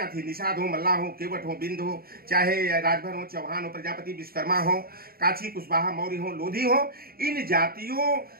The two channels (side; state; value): left; late; 0.44 ms